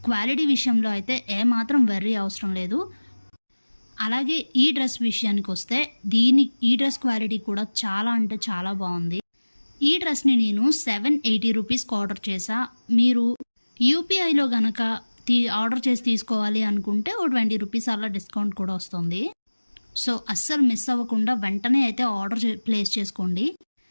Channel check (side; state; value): both; inverted; correlation -1.00